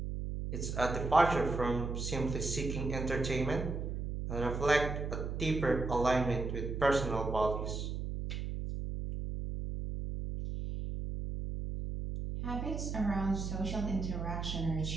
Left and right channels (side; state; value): right; noise; hum, 4 dB below the sound